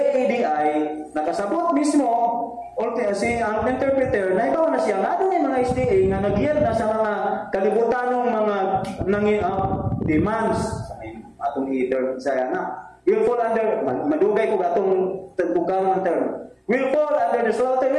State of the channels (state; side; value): identical; both; correlation 1.00